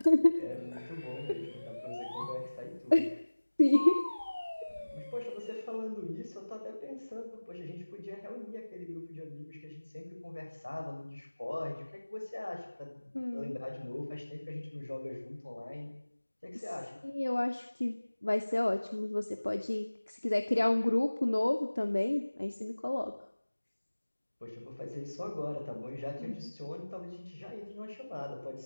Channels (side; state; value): both; inverted; correlation -1.00